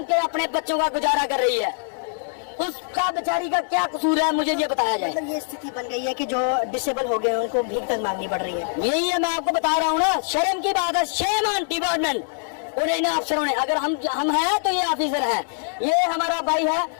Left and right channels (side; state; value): right; silent; digital silence